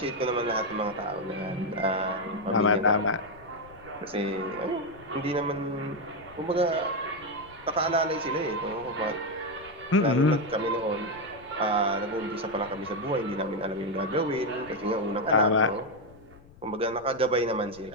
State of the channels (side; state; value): left; noise; rumble, 23 dB below the sound